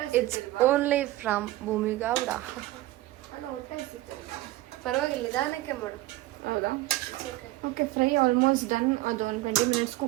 It's only from Bhoomigowda. ಪರವಾಗಿಲ್ಲ, ನಿಧಾನಕ್ಕೆ ಮಾಡು. ಹೌದಾ? Okay, fry almost done. ಅದು ಒಂದು 20 ಮಿನಿಟ್ಸ್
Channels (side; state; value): left; quieter; 17.3 dB